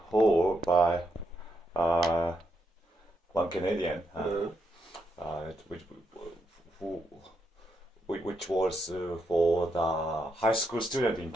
Hall by one Canadian, which was for the high school student in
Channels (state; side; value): normal; both; correlation 0.80